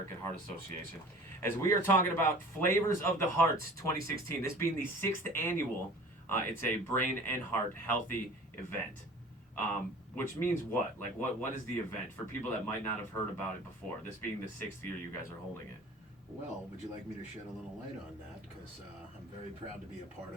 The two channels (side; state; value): both; normal; correlation 0.44